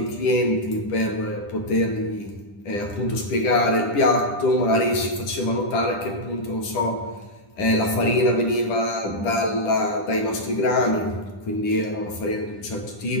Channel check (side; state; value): right; late; 10 ms